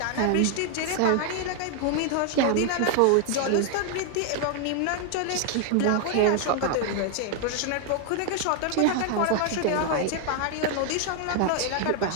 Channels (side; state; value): both; different; correlation 0.00